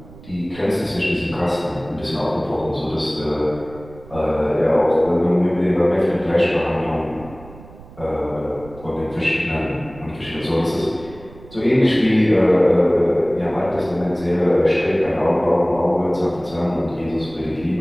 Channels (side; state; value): right; noise; rumble, 19 dB below the sound